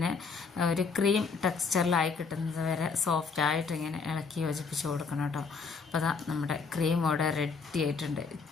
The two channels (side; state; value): right; quieter; 5.0 dB